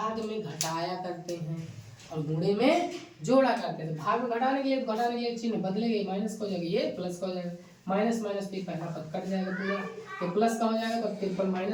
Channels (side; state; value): both; identical; correlation 1.00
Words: में घटाया करते हैं और गुणे में जोड़ा करते हैं। तो भाग में घटाने के लिए चिन्ह बदलेंगे, माइनस का हो जाएगा, ये प्लस का हो जाएगा, माइनस माइनस भी पहला पद कट जाएगा पूरा, तो प्लस का हो जाएगा। तो 53